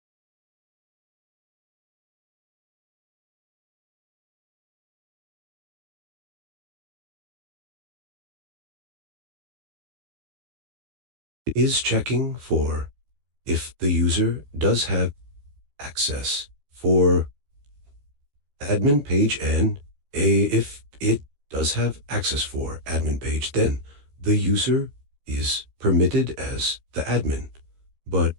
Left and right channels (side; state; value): left; late; 14 ms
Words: It is checking for if the user does have access for admin page and if it does have access for admin page, then the user is permitted as the admin. But